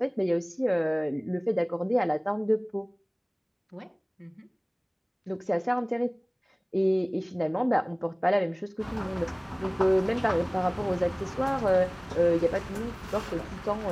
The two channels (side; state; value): both; identical; correlation 1.00